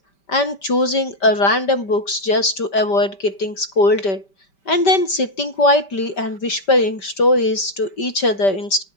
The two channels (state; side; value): late; right; 5.1 ms